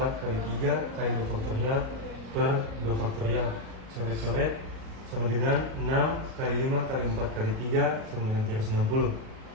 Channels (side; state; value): left; late; 37 ms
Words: kali 3 kali 2 faktorial per 2 faktorial. Coret-coret sama dengan 6 kali 5 kali 4 kali 3 sama dengan 360.